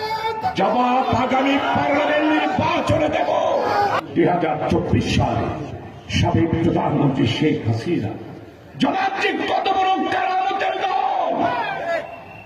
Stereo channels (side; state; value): both; identical; correlation 1.00